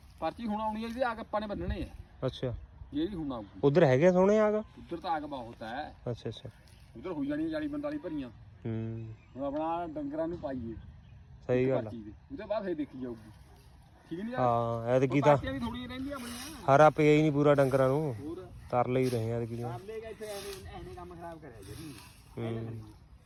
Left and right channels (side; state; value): both; identical; correlation 1.00